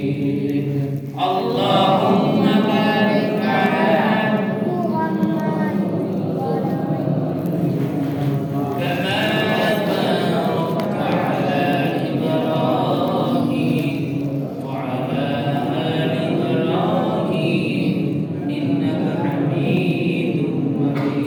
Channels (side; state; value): both; identical; correlation 1.00